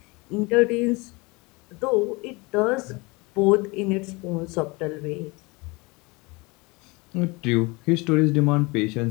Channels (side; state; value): right; quieter; 25.8 dB